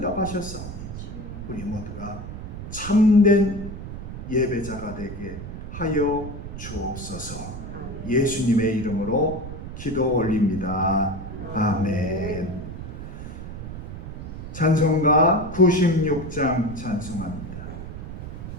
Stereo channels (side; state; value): right; noise; rumble, 9 dB below the sound